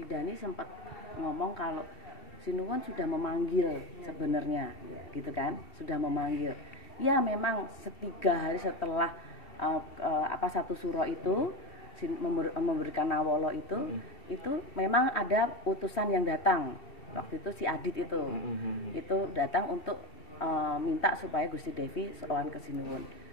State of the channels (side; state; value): right; late; 2.7 ms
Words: Dani sempat ngomong kalau Sinuwun sudah memanggil sebenarnya, gitu kan? Sudah memanggil. Ya memang 3 hari setelah satu suro itu memberikan nawolo itu memang ada utusan yang datang. Waktu itu si Adit itu datang untuk minta supaya Gusti Devi sowan ke Sinuwun.